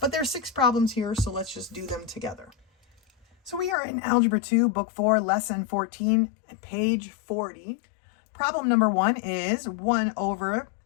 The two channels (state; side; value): drops out; right; at 3.8 s